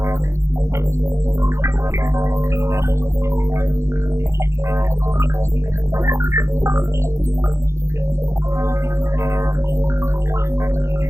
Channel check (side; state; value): left; late; 0.14 ms